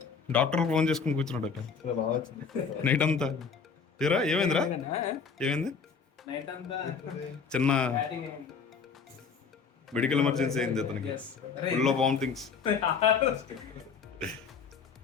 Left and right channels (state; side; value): quieter; right; 5.8 dB